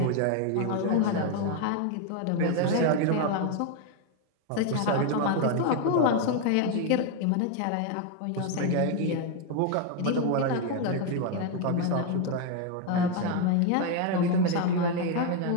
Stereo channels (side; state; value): both; different; correlation 0.01